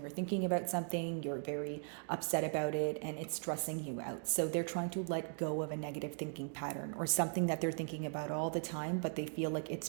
thinking about something, you're very upset about it, and it's stressing you out. So they're trying to let go of a negative thinking pattern, or something that they're thinking about all the time, but they feel like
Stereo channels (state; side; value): silent; left; 52 dB below the other